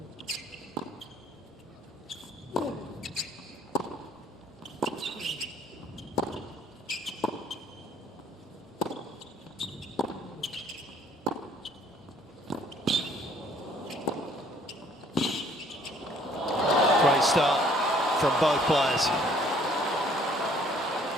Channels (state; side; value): normal; both; correlation 0.59